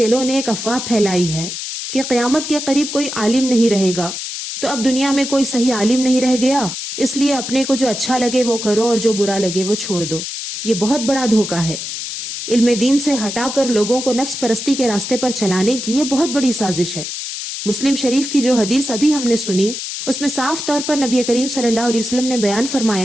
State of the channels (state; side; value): noise; left; hiss, 6 dB below the sound